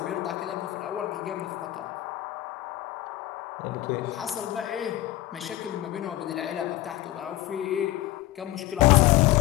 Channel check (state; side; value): quieter; right; 15.6 dB